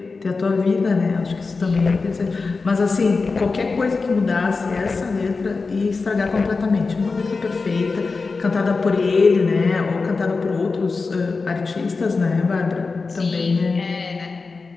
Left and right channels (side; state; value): right; quieter; 4.2 dB